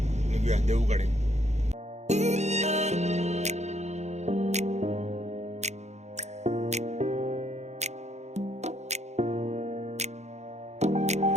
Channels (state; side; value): late; left; 0.33 ms